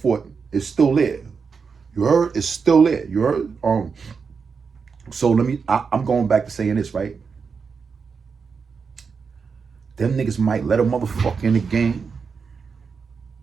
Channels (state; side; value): quieter; left; 5.5 dB